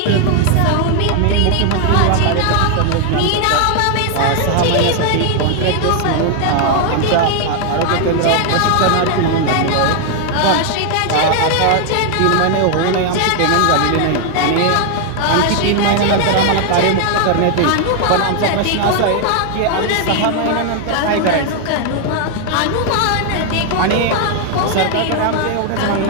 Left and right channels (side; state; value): both; different; correlation 0.00